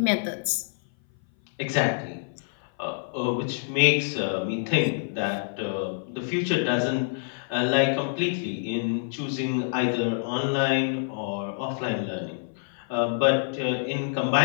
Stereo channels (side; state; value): right; silent; 57 dB below the other